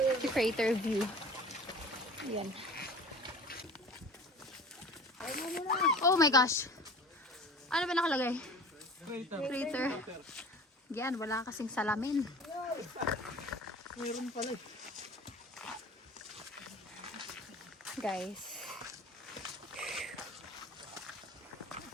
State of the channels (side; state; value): both; normal; correlation 0.41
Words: to crater view. Yan. Oh my gosh. Ano ba nakalagay? Crater. Yan, wala kasing salamin. Mayroon pala eh. Guys.